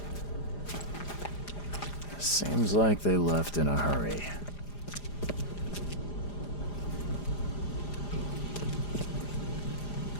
Seems like they left in a hurry.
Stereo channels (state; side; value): late; right; 4.9 ms